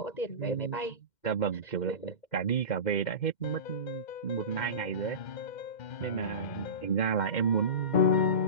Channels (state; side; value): late; right; 2.1 ms